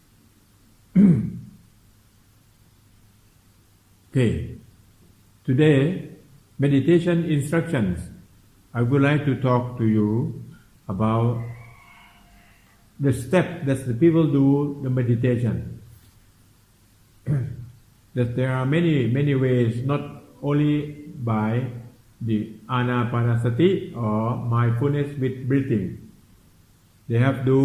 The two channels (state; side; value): identical; both; correlation 1.00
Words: Okay. Today, meditation instructions. I would like to talk to you about the step that the people do the meditation. That there are many ways, not only by the anapanasati or mindfulness with breathing. They have